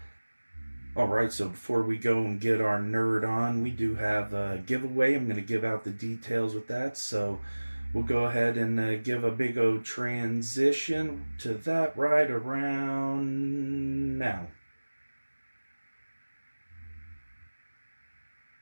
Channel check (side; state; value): both; inverted; correlation -1.00